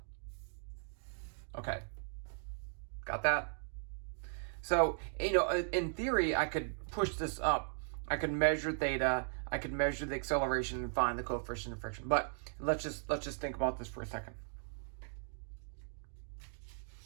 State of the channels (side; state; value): left; silent; digital silence